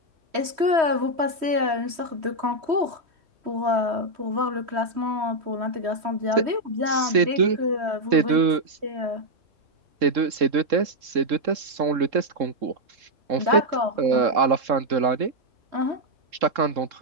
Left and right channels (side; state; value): left; late; 3.7 ms